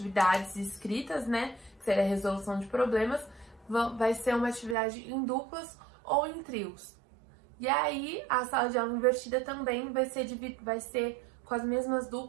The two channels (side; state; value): left; drops out; at 4.8 s